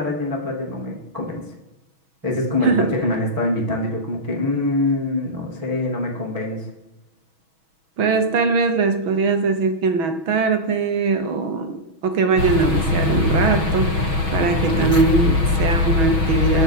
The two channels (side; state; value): left; late; 6.2 ms